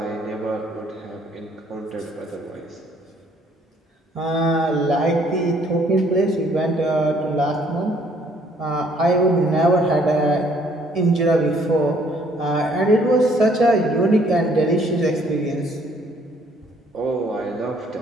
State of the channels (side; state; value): both; normal; correlation 0.63